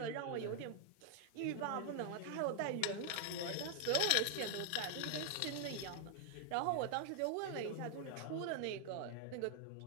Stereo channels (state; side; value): different; both; correlation 0.00